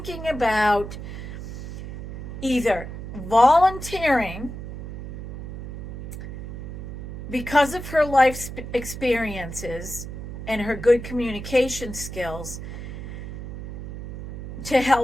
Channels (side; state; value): right; noise; hum, 9 dB below the sound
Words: about either volunteering because of her life experiences and her good communication skills to